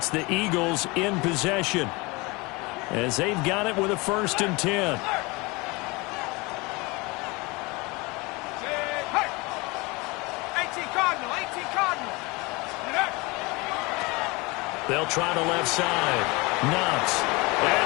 the Eagles in possession as they've got it with a 1st and 10. They'll try the left side. Knox. And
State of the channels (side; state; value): right; quieter; 25.3 dB